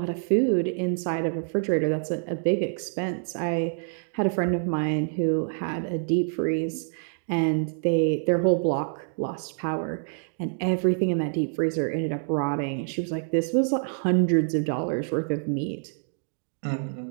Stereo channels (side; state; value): left; silent; 60 dB below the other